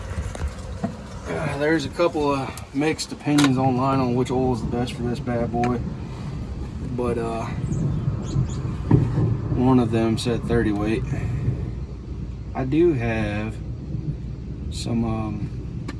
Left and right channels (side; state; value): both; identical; correlation 1.00